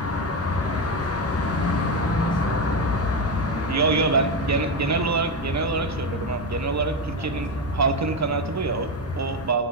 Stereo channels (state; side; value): normal; both; correlation 0.13